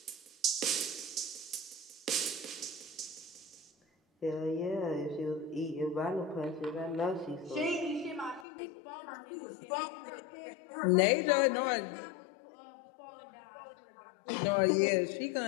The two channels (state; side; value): drops out; right; at 8.5 s